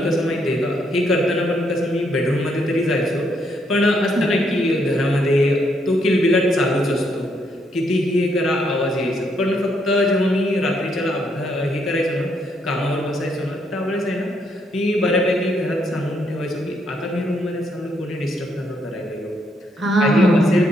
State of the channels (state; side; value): normal; both; correlation 0.74